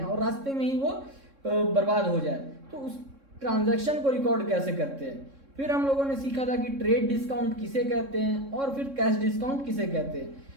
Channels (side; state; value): left; late; 3.6 ms